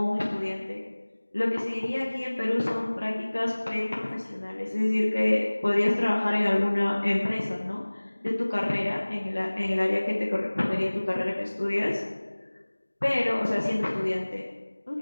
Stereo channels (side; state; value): both; inverted; correlation -1.00